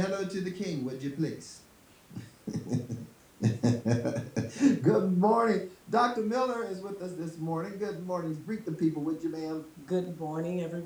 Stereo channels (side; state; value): both; identical; correlation 1.00